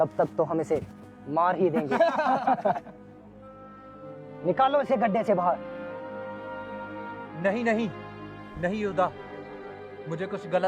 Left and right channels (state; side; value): identical; both; correlation 1.00